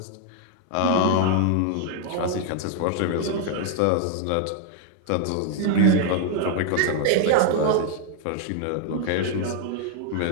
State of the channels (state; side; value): different; both; correlation 0.00